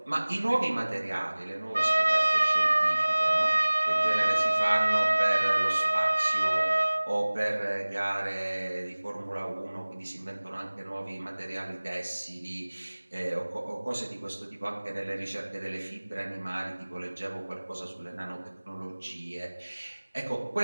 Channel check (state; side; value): inverted; both; correlation -1.00